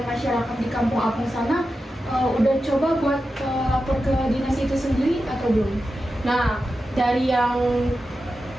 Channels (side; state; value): both; normal; correlation 0.91